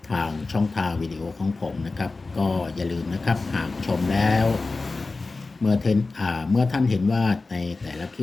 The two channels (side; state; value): right; quieter; 3.6 dB